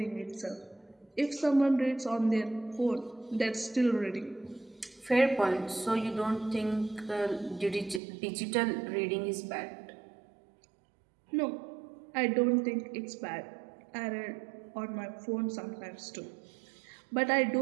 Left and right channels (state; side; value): drops out; left; at 8.0 s